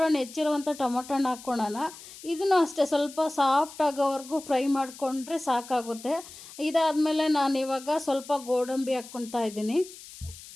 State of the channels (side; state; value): left; noise; hiss, 17 dB below the sound